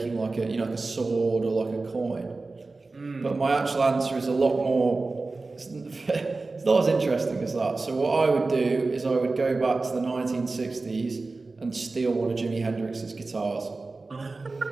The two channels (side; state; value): left; quieter; 3.6 dB